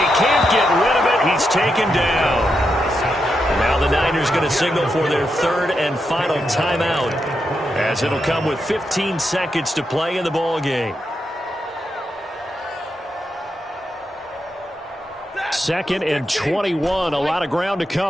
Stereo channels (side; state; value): both; normal; correlation 0.85